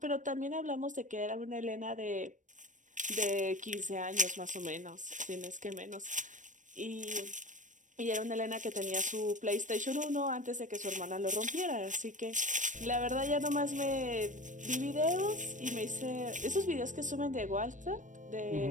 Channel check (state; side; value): late; left; 0.37 ms